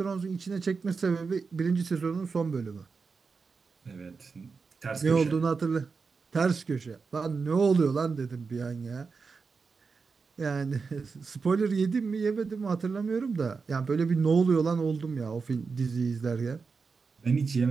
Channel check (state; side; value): quieter; left; 4.9 dB